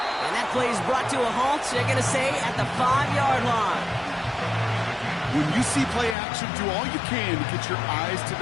And that play is brought to a halt, they're going to say, at the 5-yard line. When you see play action, do all you can to get your eyes to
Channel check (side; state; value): right; drops out; at 6.2 s